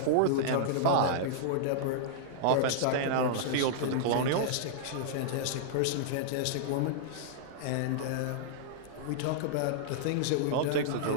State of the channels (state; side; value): different; both; correlation -0.02